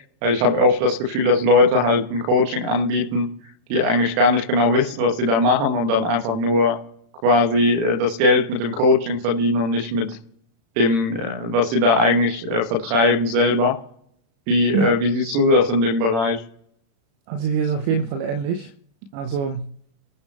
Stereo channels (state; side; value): late; left; 35 ms